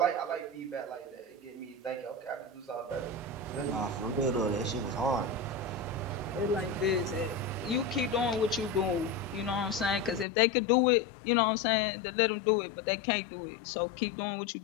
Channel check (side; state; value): right; drops out; at 10.2 s